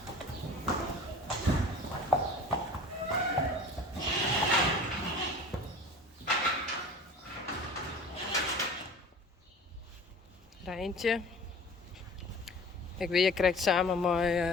Rijntje. Ik weet, je krijgt samen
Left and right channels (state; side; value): normal; both; correlation 0.42